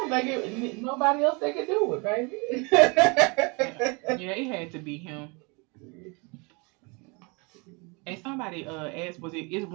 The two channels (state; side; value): quieter; left; 30.0 dB